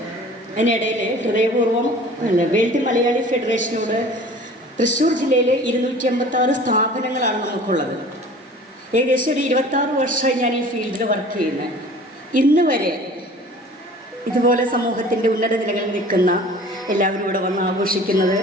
അതിനിടയിൽ ഹൃദയപൂർവ്വം വേൾഡ് മലയാളി ഫെഡറേഷനോട് തൃശ്ശൂർ ജില്ലയിൽ 256 സ്ഥാപനങ്ങളാണ് നമുക്കുള്ളത്. ഏകദേശം ഒരു 26 വർഷമായി ഞാൻ ഈ ഫീൽഡിൽ വർക്ക് ചെയ്യുന്നത്. ഇന്ന് വരെ ഇതുപോലെ സമൂഹത്തിൻ്റെ ഉന്നത നിലകളിൽ നിൽക്കുന്ന എല്ലാവരും ഇവിടെ വന്ന് ആഘോഷിക്കുന്നത്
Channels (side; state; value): both; normal; correlation 0.45